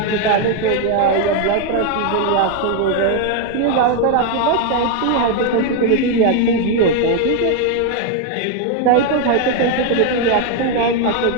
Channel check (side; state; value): both; different; correlation 0.01